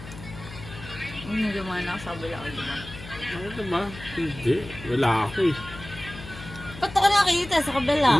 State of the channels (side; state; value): left; noise; hum, 14 dB below the sound